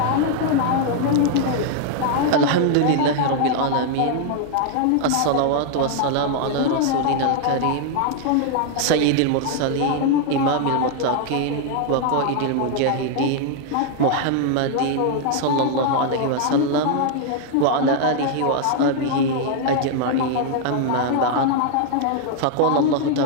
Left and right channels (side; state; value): both; different; correlation 0.00